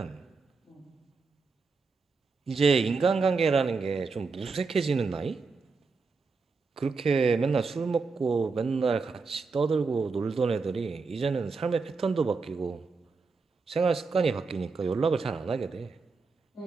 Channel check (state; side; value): quieter; left; 4.5 dB